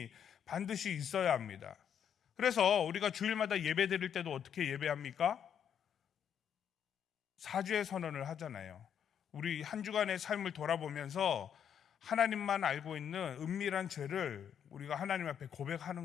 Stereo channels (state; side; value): quieter; right; 8.5 dB